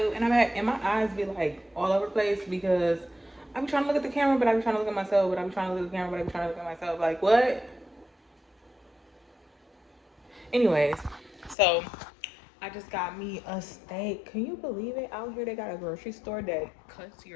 and and my eyes be like all over the place because I'm trying to look at the camera, but I'm trying to look at myself, but I'm trying to look at the camera, but I'm trying to look at myself. Like what? Anyways, so I just got me a steak. Can you believe it? Out here they got a grocery store that cuts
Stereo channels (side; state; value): right; drops out; at 11.6 s